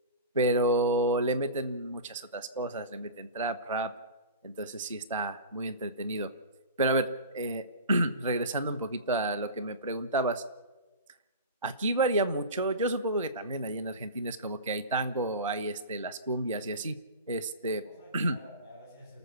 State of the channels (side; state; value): both; inverted; correlation -0.32